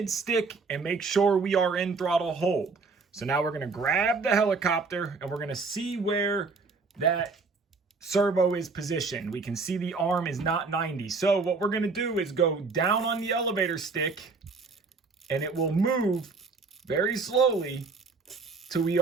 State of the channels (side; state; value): left; quieter; 4.3 dB